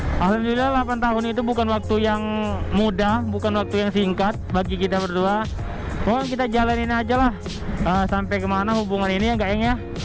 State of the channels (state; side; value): identical; both; correlation 1.00